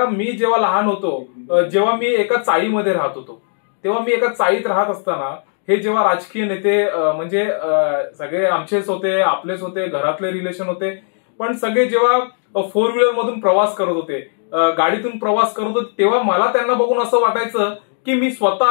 मी जेव्हा लहान होतो, जेव्हा मी एका चाळीमध्ये राहत होतो, तेव्हा मी एका चाळीत राहत असताना हे जेव्हा राजकीय नेते म्हणजे सगळे आमचेच होते, आपलेच होते, घरातले रिलेशन होते, पण सगळे जेव्हा 4 व्हीलर मधून प्रवास करत होते, गाडीतून प्रवास करत होते, तेव्हा मला त्यांना बघून असं वाटायचं की मी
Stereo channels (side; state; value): right; silent; 67 dB below the other